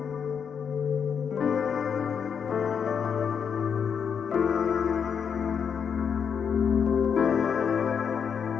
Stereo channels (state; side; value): quieter; right; 7.1 dB